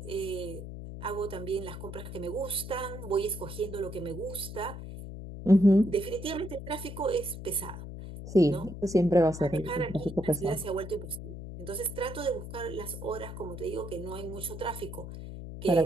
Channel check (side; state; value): left; noise; hum, 10 dB below the sound